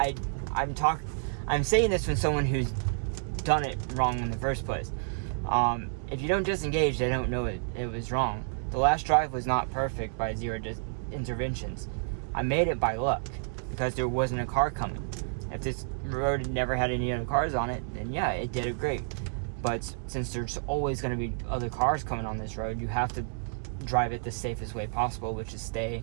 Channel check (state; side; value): silent; left; digital silence